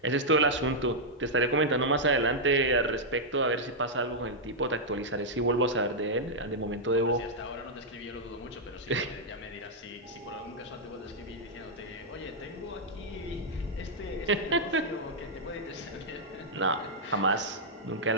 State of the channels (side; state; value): both; normal; correlation -0.05